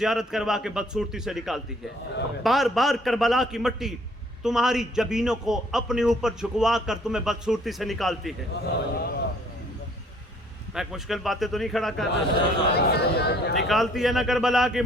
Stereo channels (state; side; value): normal; both; correlation 0.60